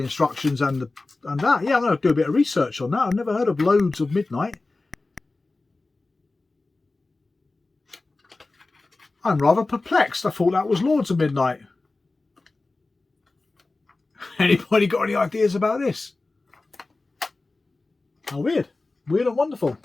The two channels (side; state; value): right; quieter; 3.3 dB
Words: instructions and that. Yeah, I'm going to do a bit of research on that. I've never heard of Loads of Midnight. I'm rather perplexed. I thought that was Lords of Midnight. Anybody got any ideas about this? How weird. Weird and wonderful.